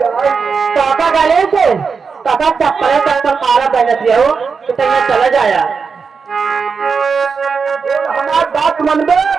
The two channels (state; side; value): quieter; left; 5.4 dB